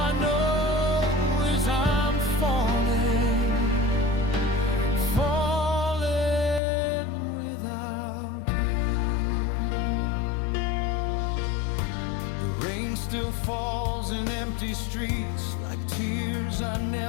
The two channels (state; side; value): drops out; right; at 6.6 s